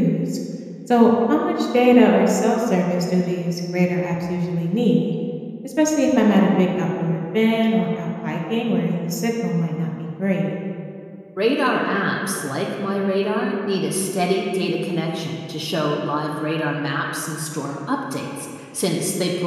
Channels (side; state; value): both; identical; correlation 1.00